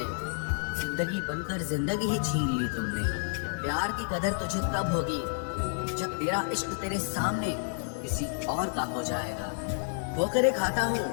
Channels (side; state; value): right; silent; 58 dB below the other